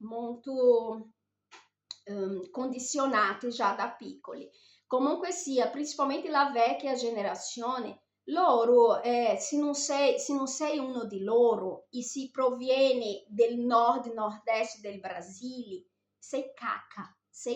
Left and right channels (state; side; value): identical; both; correlation 1.00